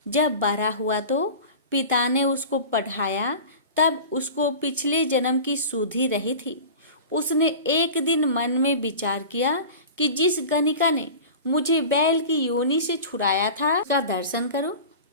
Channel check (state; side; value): inverted; both; correlation -0.35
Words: जब बड़ा हुआ तो पिता ने उसको पढ़ाया। तब उसको पिछले जन्म की सुधि रही थी। उसने एक दिन मन में विचार किया कि जिस गणिका ने मुझे बैल की योनि से छुड़ाया था उसका दर्शन करो।